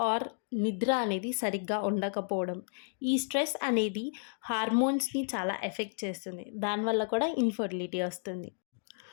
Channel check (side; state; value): right; silent; digital silence